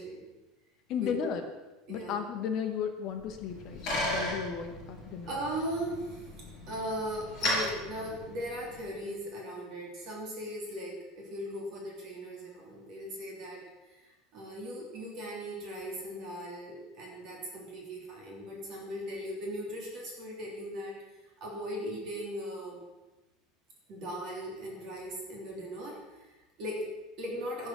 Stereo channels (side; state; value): both; normal; correlation 0.36